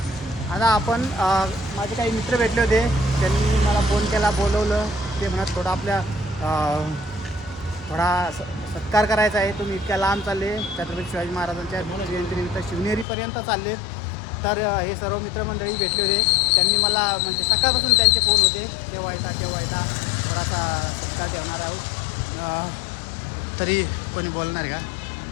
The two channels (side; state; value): right; drops out; at 13.1 s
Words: आता आपण माझे काही मित्र भेटले होते, त्यांनी मला फोन केला, बोलवलं. ते म्हणत थोडा आपल्या थोडा सत्कार करायचा आहे, तुम्ही इतक्या लांब चालले, छत्रपती शिवाजी महाराजांच्या जयंतीनिमित्त शिवनेरीपर्यंत चाललेत. तर हे सर्व मित्रमंडळी भेटले होते. त्यांनी मला म्हणजे सकाळपासून त्यांचे फोन होते, केव्हा येता थोडासा सत्कार ठेवणार आहोत. तरी कोणी बोलणार आहे का